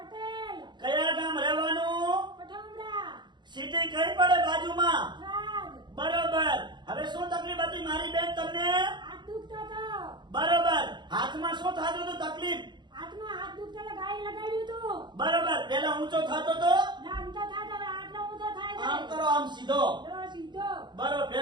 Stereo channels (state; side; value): late; left; 0.22 ms